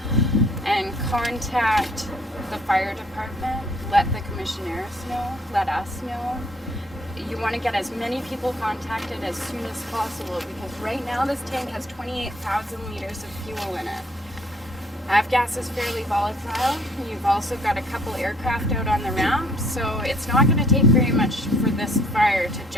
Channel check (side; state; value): both; normal; correlation 0.61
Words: And contact the fire department. Let the commissioners know. Let us know. You want to get as many people contacted as soon as possible because right now this tank has 28,000 liters of fuel in it. Avgas is fairly volatile. You've also got a couple aircraft out on the ramp, so it's not going to take very much for this fire to